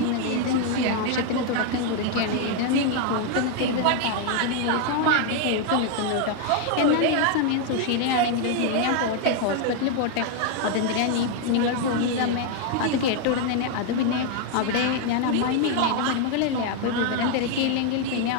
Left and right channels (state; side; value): different; both; correlation 0.00